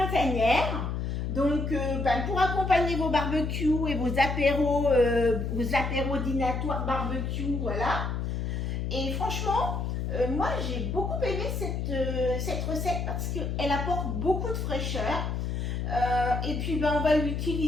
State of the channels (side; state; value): left; noise; hum, 2 dB below the sound